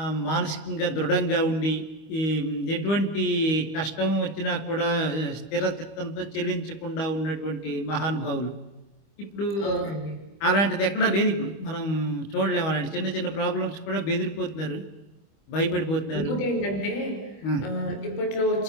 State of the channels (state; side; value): late; right; 25 ms